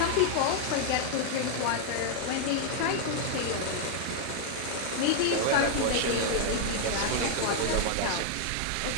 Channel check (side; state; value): both; different; correlation 0.00